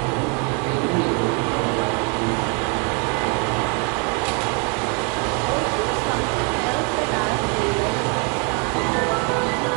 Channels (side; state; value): left; quieter; 34.2 dB